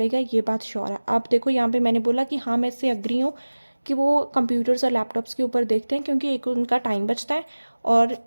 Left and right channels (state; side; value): inverted; both; correlation -1.00